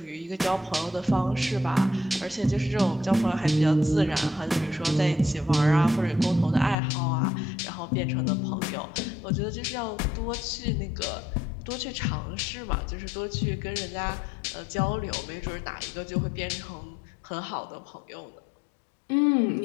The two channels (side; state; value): right; drops out; at 6.8 s